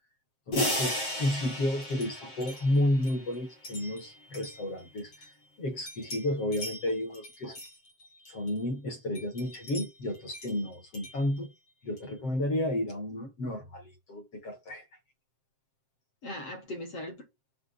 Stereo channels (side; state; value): right; late; 7.6 ms